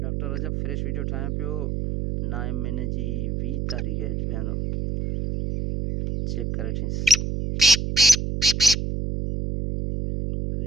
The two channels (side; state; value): right; noise; hum, 2 dB below the sound